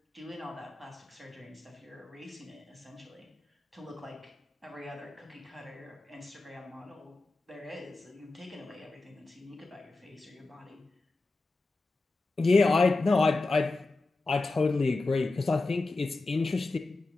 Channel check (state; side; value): quieter; right; 3.3 dB